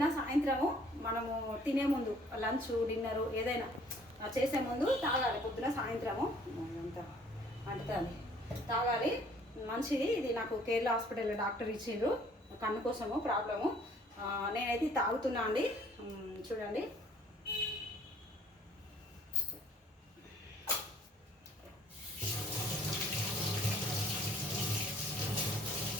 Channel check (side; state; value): both; normal; correlation 0.58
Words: సాయంత్రము మనము తినే ముందు లంచ్ డిన్నరు ఏదైనా చేసే ముందు తాగాలి. పొద్దున సాయంత్రము అంత అంటుతుంది తాగాలి, మంచిది. ఇది నాకు కేరళ హాస్పిటల్లో డాక్టర్ ఇచ్చిండ్రు కన్ను కోసము ప్రాబ్లము. నేనైతే తాగుతున్నా అండి. చూడండి,